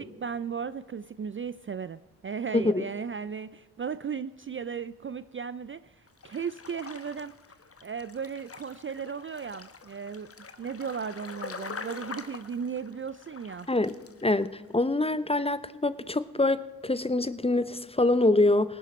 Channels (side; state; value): both; normal; correlation 0.55